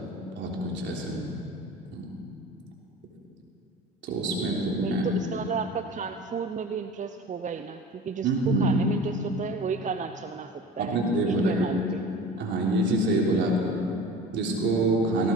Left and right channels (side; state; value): both; normal; correlation 0.38